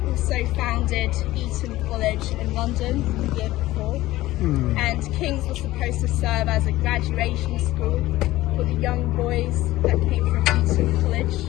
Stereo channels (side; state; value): right; quieter; 16.8 dB